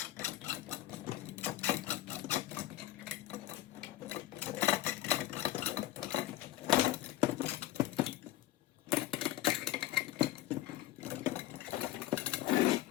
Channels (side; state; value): right; quieter; 14.6 dB